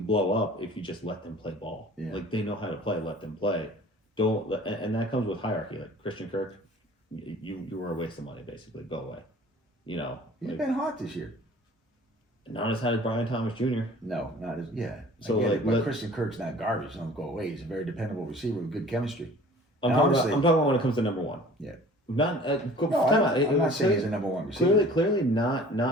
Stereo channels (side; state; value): both; normal; correlation 0.47